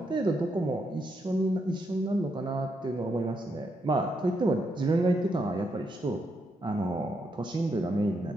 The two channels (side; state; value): both; normal; correlation 0.80